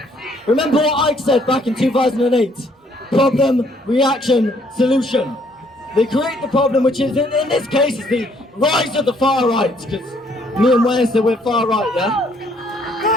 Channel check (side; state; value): both; normal; correlation 0.65